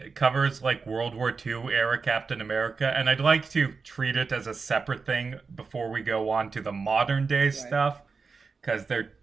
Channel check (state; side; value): quieter; left; 4.8 dB